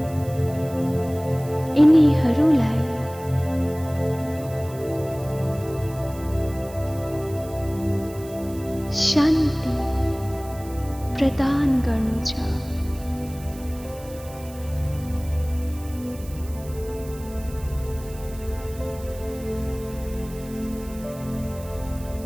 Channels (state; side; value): noise; right; hiss, 19 dB below the sound